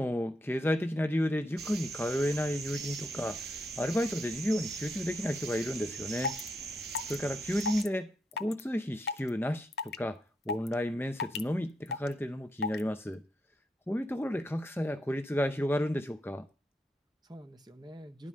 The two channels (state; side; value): normal; both; correlation 0.81